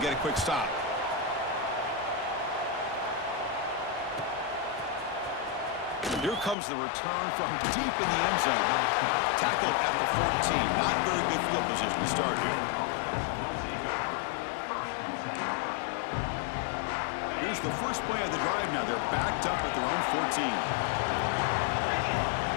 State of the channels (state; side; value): drops out; right; at 6.6 s